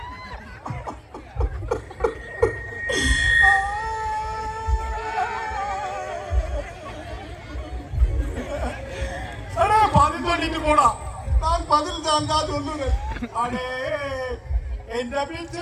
பதில் சொல்லிட்டு போடா. நான் பதில் தான் சொல்லுவேன். அடே எந்த பிச்சு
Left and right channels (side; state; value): both; identical; correlation 1.00